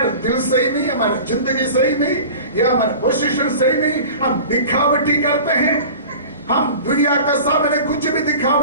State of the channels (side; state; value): both; inverted; correlation -0.38